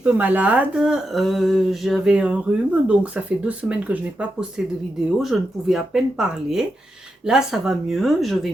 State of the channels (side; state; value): both; normal; correlation 0.86